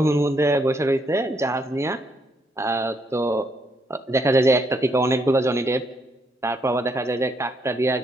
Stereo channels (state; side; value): normal; both; correlation 0.74